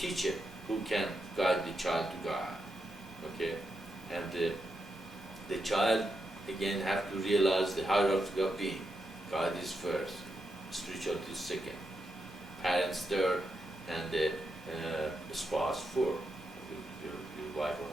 who can guide the child to God. Okay, and the child again have to realize the hierarchy of being. God is first, spirituality is second, parents third, and the spouse fourth, your wife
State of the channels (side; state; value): both; normal; correlation 0.85